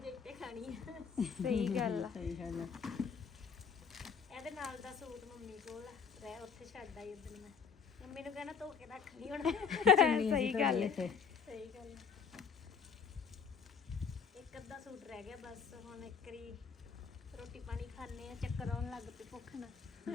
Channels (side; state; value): right; quieter; 6.2 dB